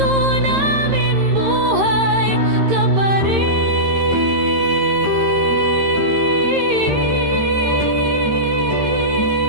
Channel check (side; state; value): left; late; 13 ms